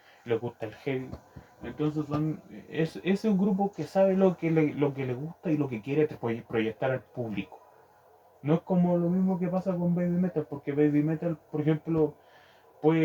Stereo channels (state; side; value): identical; both; correlation 1.00